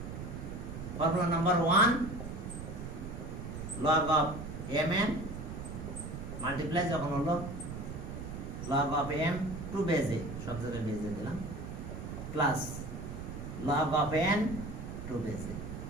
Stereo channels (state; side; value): noise; right; rumble, 7 dB below the sound